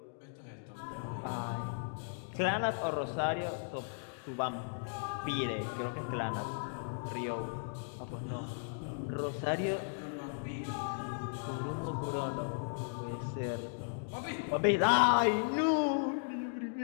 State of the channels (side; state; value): right; silent; digital silence